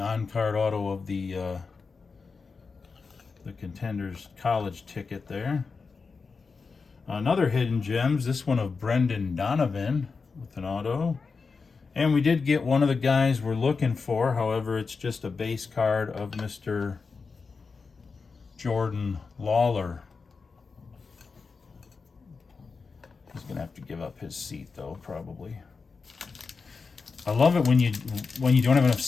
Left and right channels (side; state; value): right; quieter; 4.8 dB